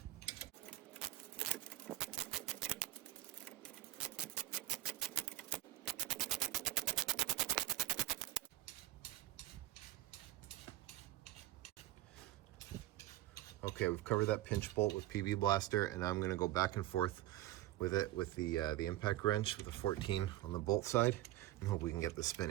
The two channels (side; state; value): left; quieter; 14.9 dB